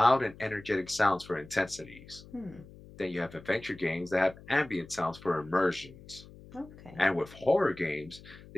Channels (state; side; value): noise; left; hum, 19 dB below the sound